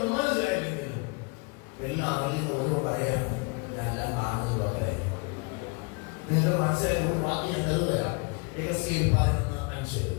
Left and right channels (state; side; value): quieter; right; 30.4 dB